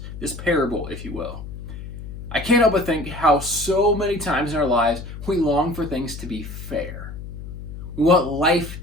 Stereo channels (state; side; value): noise; left; hum, 10 dB below the sound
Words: this parable, if you will, I can't help but think how so many times in our lives we long for things to be fair. We want life